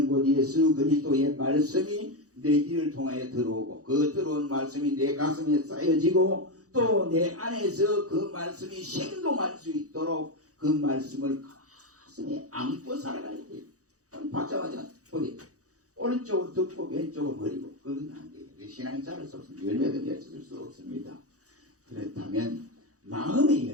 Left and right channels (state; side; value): late; left; 0.66 ms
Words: 곧 예수 그리스도의 말씀이 내 귀를 통하여 들어오고 그 들어온 말씀이 내 가슴에 쌓여지고 또 내 안에서 그 말씀이 생동할 수 있도록 그 말씀을 가슴에 안고 살아가야 돼요. 받자마자 어디 오른쪽으로 듣고 왼쪽으로 버리고 그건 안 돼요. 신앙이 자랄 수 없습니다. 열매도 맺을 수 없습니다. 그렇다면 마음의